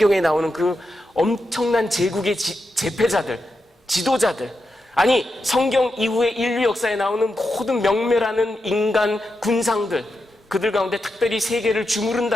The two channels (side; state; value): both; normal; correlation 0.87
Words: 나오는 그 엄청난 제국의 제패자들, 지도자들, 아니 성경 이후에 인류 역사에 나오는 모든 명멸하는 인간 군상들, 그들 가운데 특별히 세계를